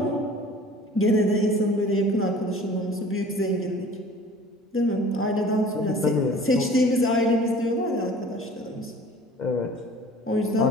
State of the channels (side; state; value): both; normal; correlation 0.46